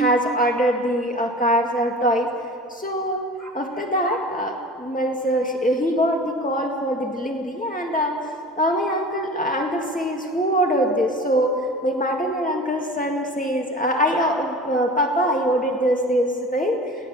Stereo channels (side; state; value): both; normal; correlation 0.39